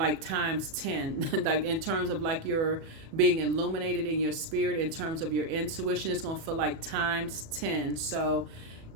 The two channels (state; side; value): late; left; 37 ms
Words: times 10, like in terms of like you're being illuminated in your spirit, in terms of your intuition. It's going to feel like times 10. So